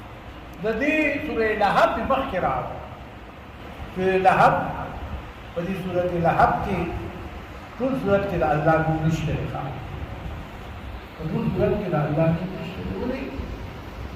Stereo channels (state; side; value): identical; both; correlation 1.00